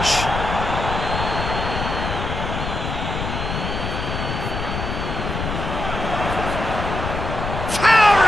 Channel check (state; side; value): noise; left; rumble, 4 dB below the sound